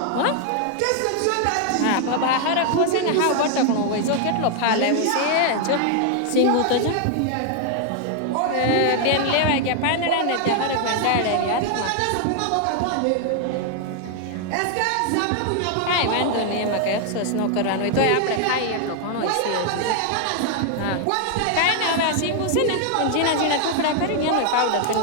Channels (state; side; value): different; both; correlation 0.00